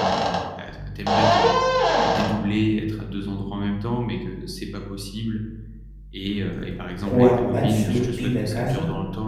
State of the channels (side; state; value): both; identical; correlation 1.00